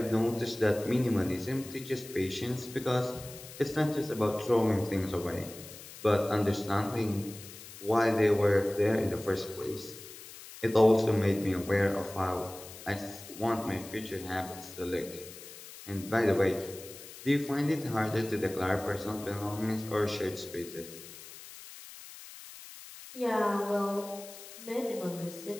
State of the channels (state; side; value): noise; left; hiss, 15 dB below the sound